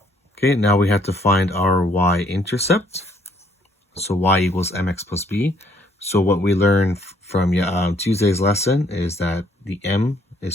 Okay, now we have to find our y-intercept. So y equals mx plus b. So what we learned from Tuesday's lesson is that the m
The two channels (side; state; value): both; normal; correlation 0.65